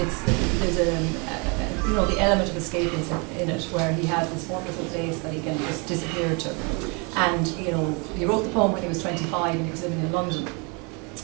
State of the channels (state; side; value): quieter; left; 32.0 dB